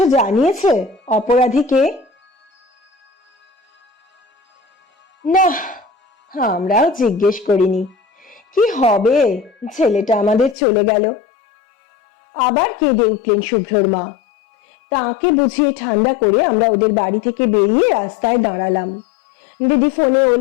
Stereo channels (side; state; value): right; drops out; at 10.6 s